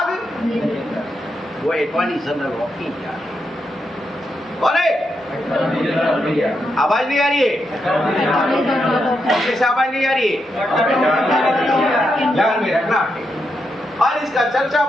नहीं लेता। वो अटॉर्नी जनरल ऑफ इंडिया है। कौन है? आवाज नहीं आ रही है? कैसे आवाज नहीं आ रही है? ध्यान में रखना है। और इसका चर्चा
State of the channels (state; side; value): normal; both; correlation 0.83